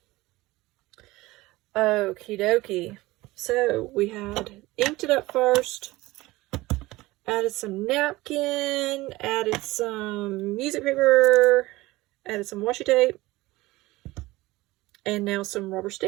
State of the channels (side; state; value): left; quieter; 19.6 dB